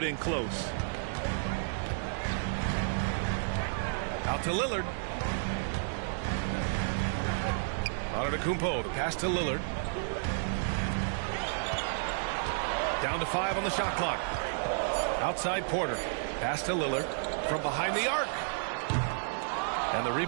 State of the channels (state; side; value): silent; left; digital silence